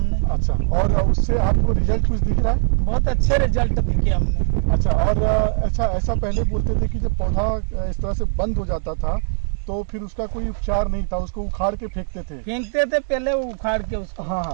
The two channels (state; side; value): silent; left; digital silence